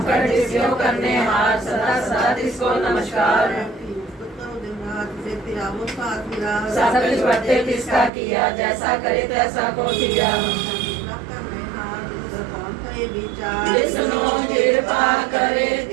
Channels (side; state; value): left; drops out; at 8.1 s